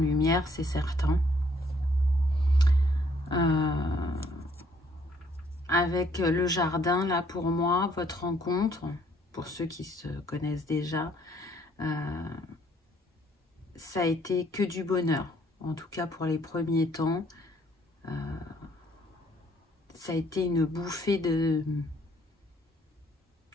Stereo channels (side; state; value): both; normal; correlation 0.65